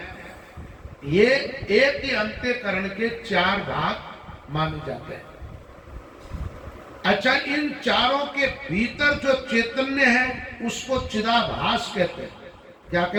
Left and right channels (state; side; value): identical; both; correlation 1.00